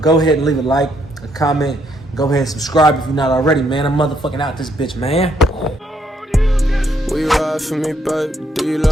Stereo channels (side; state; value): both; normal; correlation 0.72